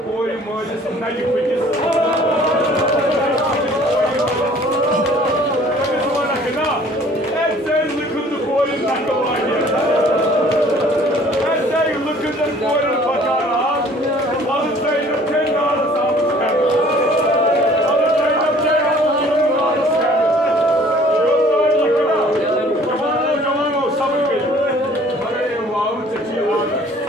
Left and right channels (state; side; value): normal; both; correlation 0.53